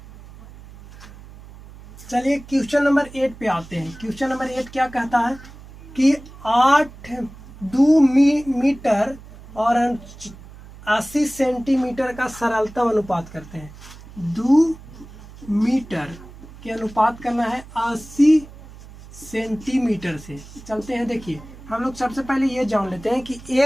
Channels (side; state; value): right; noise; hum, 18 dB below the sound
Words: चलिए क्वेश्चन नंबर 8 पे आते हैं। क्वेश्चन नंबर 8 क्या कहता है कि 2 मीटर और 80 सेंटीमीटर का सरलतम अनुपात करते हैं। 2 मीटर के अनुपात करना है 80 सेंटीमीटर से। चलते हैं, देखिए हम लोग सबसे पहले ये जान लेते हैं कि